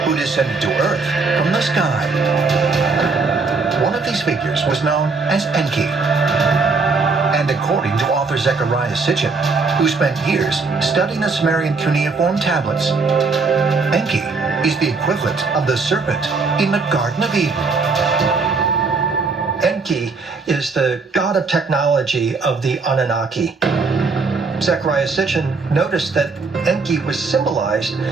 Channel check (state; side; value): quieter; left; 4.3 dB